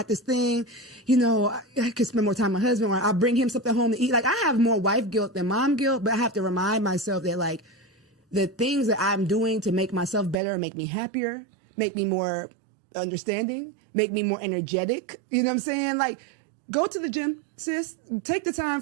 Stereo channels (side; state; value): left; drops out; at 10.4 s